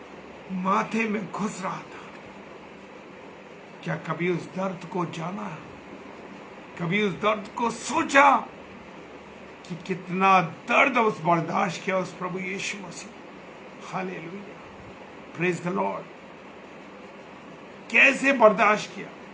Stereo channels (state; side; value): identical; both; correlation 1.00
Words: माथे में घुस रहा था, क्या कभी उस दर्द को जाना, कभी उस दर्द को सोचा कि कितना दर्द उस बर्दाश्त किया उस प्रभु यीशु मसीह। Hallelujah, praise the Lord. कैसे बर्दाश्त किया